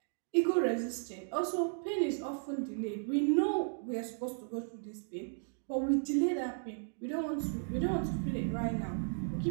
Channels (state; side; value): silent; left; digital silence